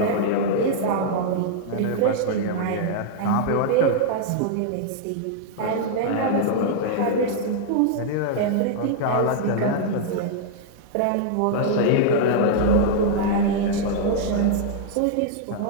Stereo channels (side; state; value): both; different; correlation -0.01